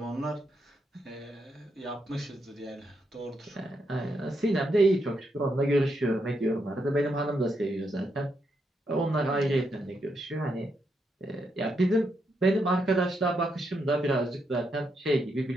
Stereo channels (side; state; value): both; normal; correlation 0.80